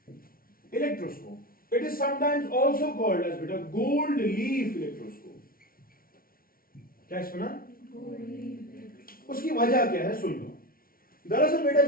Electroscope. It is sometimes also called as beta gold leaf electroscope. क्या सुना? उसकी वजह क्या है सुन लो। दरअसल बेटा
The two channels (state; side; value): late; right; 0.43 ms